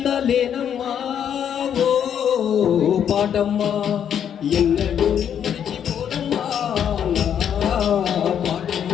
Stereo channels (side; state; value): right; quieter; 8.8 dB